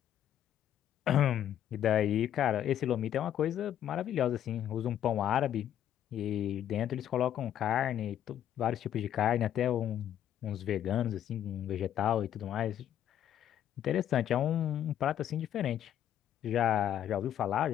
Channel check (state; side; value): quieter; right; 10.7 dB